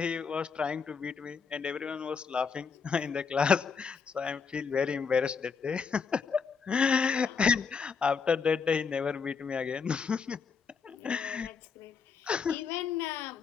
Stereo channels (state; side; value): quieter; right; 5.7 dB